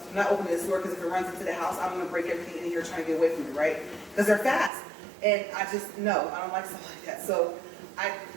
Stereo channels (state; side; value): drops out; left; at 4.7 s